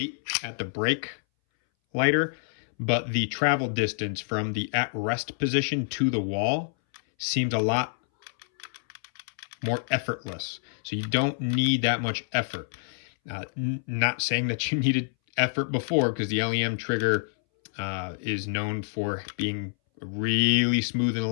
at the break lighter, but the travel distance from the at-rest position to the wall seems a lot more effortless. So you don't need that much effort. Not saying that you needed effort before, because the LEM trigger is known for being really smooth and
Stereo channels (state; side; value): silent; right; 60 dB below the other